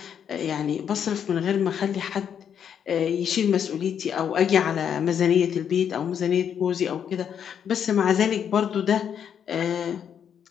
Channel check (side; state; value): right; quieter; 8.3 dB